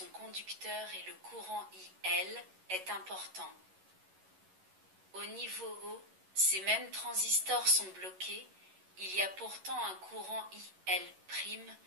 conducteurs et le courant IL est important. Au niveau haut, ces mêmes transistors sont bloqués, il y a pourtant un courant IL',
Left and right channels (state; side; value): late; left; 11 ms